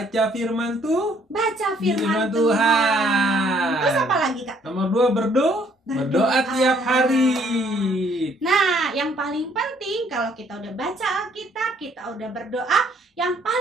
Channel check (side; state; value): both; normal; correlation 0.64